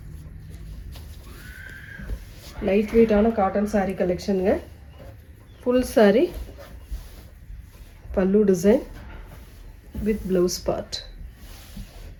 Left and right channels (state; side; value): identical; both; correlation 1.00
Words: Light வெயிட்டான காட்டன் சாரீ கலெக்ஷனுங்க. Full sari pallu design with blouse part.